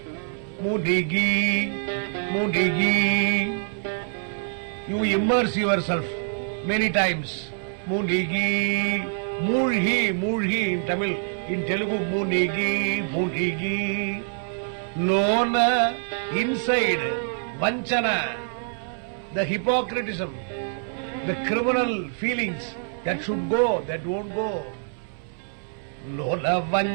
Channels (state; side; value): silent; left; 61 dB below the other